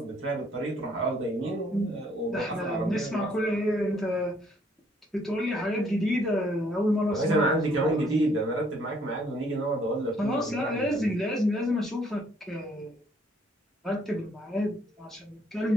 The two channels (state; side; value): normal; both; correlation 0.65